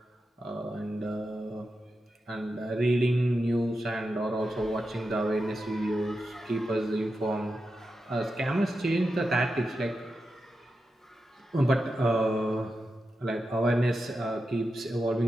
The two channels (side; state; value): both; normal; correlation 0.89